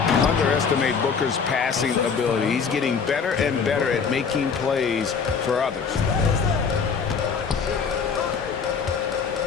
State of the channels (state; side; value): quieter; right; 5.9 dB